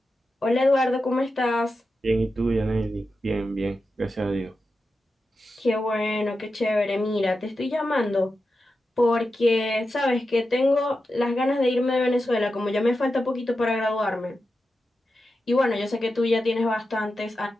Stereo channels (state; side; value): normal; both; correlation 0.90